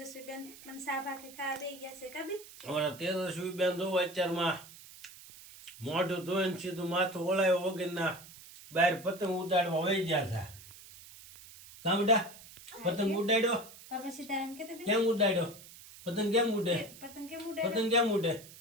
બેન પણ સા ભાખરી ખાવા દઈ ગયા છે. કબી અમારા તેજસ્વી બેન જોવો અત્યારમાં મોઢું ધોઈને સીધું માથું ઓળાયો વગરના બહાર પતંગ ઉડાડવા વહી ગયા છે. કામ બેટા પતંગ ઉડાડ્યો? બાપા સીતારામ કે કેમ ઉડાડ્યો? પતંગ કેમ ઉડે? પતંગ કેમ ઉડે? પતંગ કેમ ઉડે?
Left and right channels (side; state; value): right; noise; hiss, 18 dB below the sound